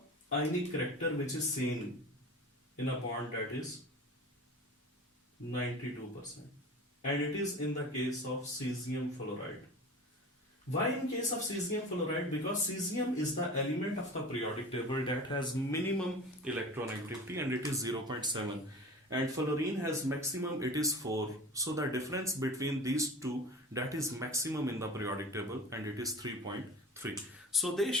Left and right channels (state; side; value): normal; both; correlation 0.37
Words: ionic character which is seen in a bond, that is 92%. And it is in the case of cesium fluoride. Why in case of cesium fluoride? Because cesium is the element of the periodic table that has minimum electronegativity and it is 0.7. And fluorine has maximum, it is 4. So the difference between these two, that is maximum in the periodic table, and it is 3.3. So they